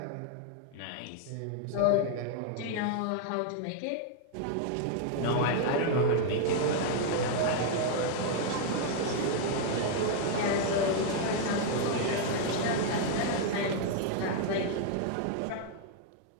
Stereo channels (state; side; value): different; both; correlation 0.00